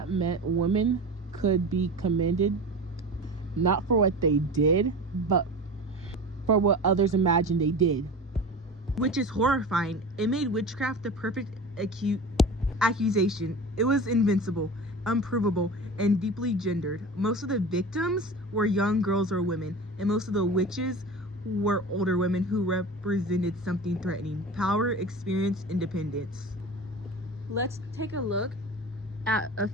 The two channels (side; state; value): both; normal; correlation 0.32